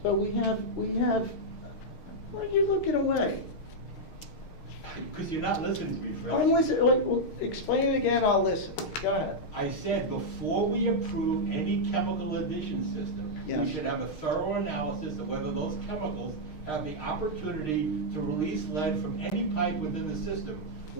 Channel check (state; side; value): late; right; 6.5 ms